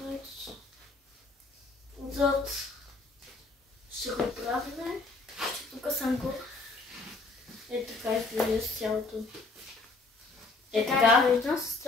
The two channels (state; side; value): quieter; right; 3.5 dB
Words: Отзад ще го правим. Тук съм го. Така изглежда с цялото. Така.